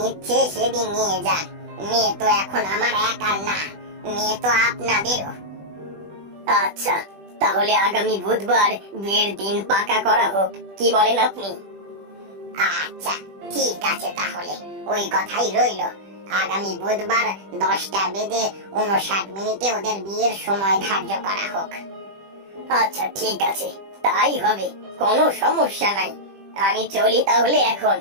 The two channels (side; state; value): left; late; 20 ms